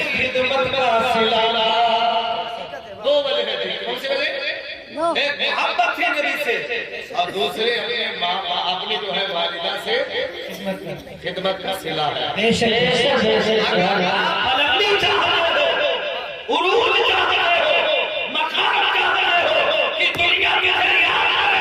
खिदमत का सिला। दो वजह थी, कौन सी वजह? एक मोहब्बत थी नबी से और दूसरे अपने माँ अपनी जो है वालिदा से खिदमत का सिला है। बेशक बुलंदी चाह रहे हो, उरूज चाह रहे हो, मकाम चाह रहे हो कि दुनिया के जरिए आना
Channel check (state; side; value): identical; both; correlation 1.00